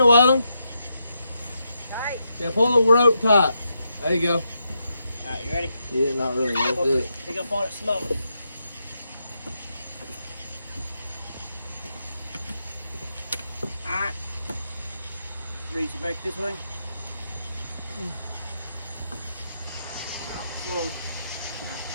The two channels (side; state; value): both; inverted; correlation -0.83